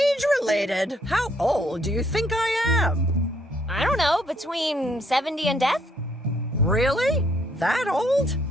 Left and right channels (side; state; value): both; normal; correlation 0.69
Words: How old do you think I am? I don't know, between 70 and death? Really? That old?